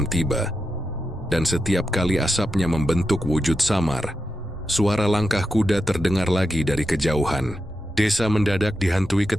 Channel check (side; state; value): both; normal; correlation 0.88